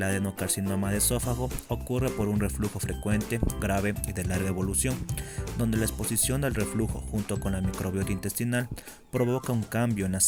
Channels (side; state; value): both; identical; correlation 1.00